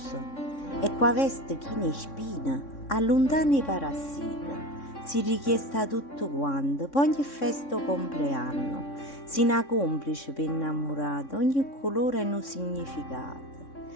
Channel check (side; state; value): right; late; 3.6 ms